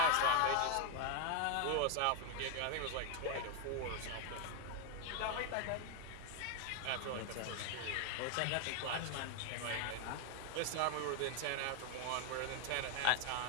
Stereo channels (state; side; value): different; both; correlation 0.01